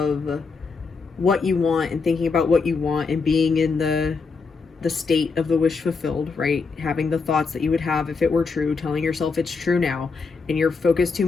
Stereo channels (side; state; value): right; quieter; 4.7 dB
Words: what you want and thinking about what you want and being in the the state of the wish fulfilled, right? Having the thoughts that you would have if it were true, telling yourself it's true now, and you're focused too